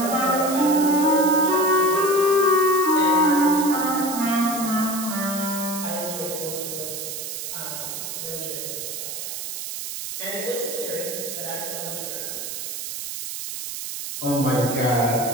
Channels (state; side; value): noise; right; hiss, 6 dB below the sound